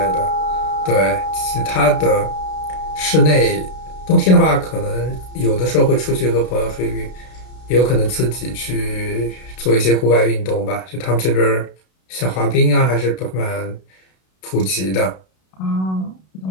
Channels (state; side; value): late; right; 32 ms